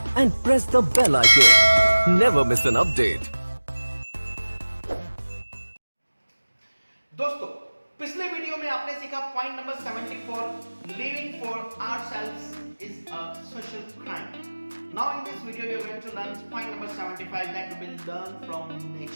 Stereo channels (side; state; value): both; inverted; correlation -1.00